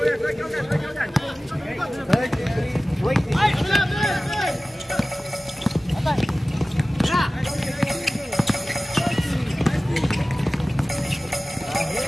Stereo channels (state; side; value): normal; both; correlation 0.97